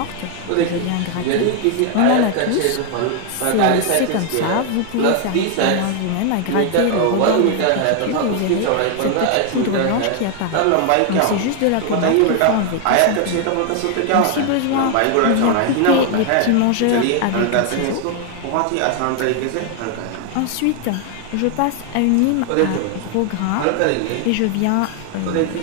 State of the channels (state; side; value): different; both; correlation 0.00